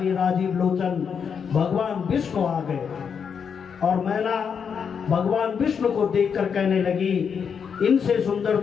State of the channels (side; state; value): right; quieter; 6.8 dB